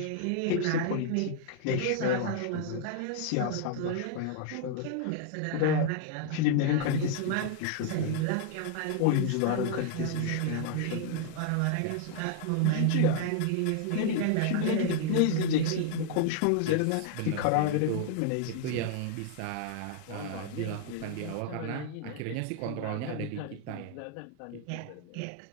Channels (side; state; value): both; different; correlation 0.00